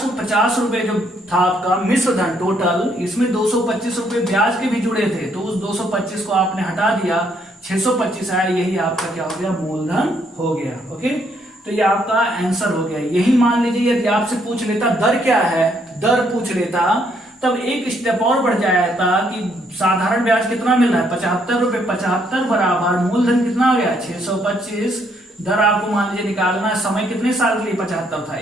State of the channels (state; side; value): normal; both; correlation 0.70